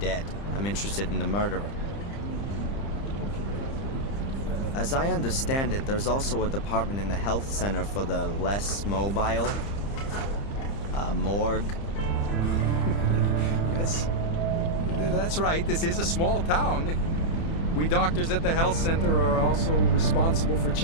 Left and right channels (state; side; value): late; right; 30 ms